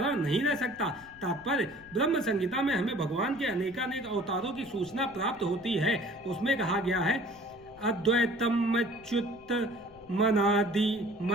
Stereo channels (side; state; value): left; noise; rumble, 24 dB below the sound